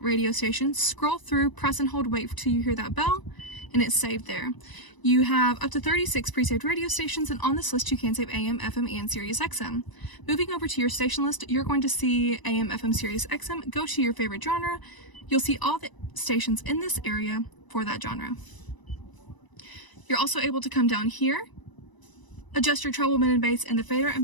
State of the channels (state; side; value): late; right; 1.0 ms